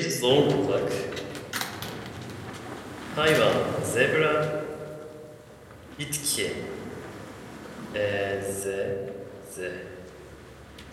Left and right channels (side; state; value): both; identical; correlation 1.00